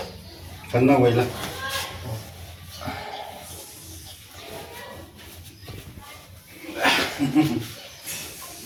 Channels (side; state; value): both; identical; correlation 1.00